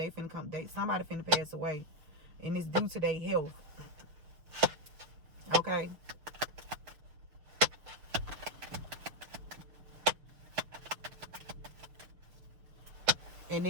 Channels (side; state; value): left; late; 6.6 ms